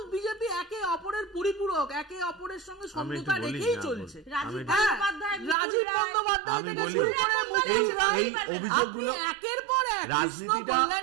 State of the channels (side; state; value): left; drops out; at 5.6 s